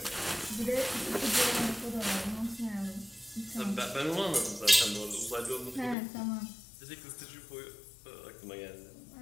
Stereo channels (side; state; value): right; drops out; at 6.0 s